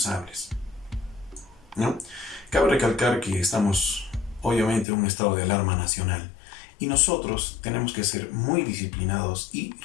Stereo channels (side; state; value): right; drops out; at 4.9 s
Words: ¿no? Cabe recalcar que estamos, obviamente, en un estado de alarma nacional y nosotros tenemos que ser muy disciplinados y